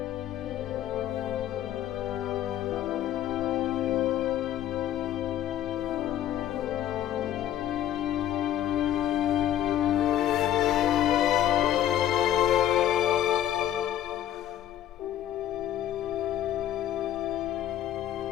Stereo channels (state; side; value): quieter; right; 11.8 dB